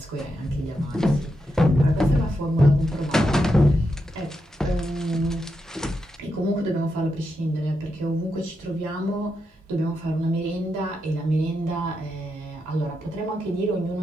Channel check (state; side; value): normal; both; correlation 0.85